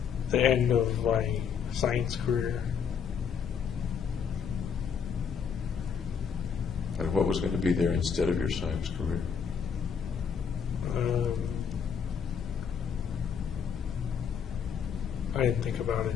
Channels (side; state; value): right; quieter; 6.9 dB